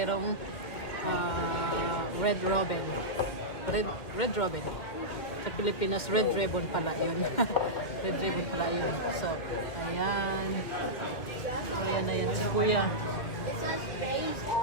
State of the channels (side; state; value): right; late; 2.1 ms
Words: Red Robin. Red Robin. Sa Pilipinas, Red Ribbon pala yun. Red Ribbon pala yun. So, ayan. Ayan si Kuya. It says base